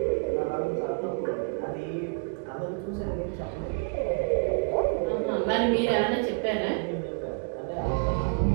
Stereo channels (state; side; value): quieter; left; 35.0 dB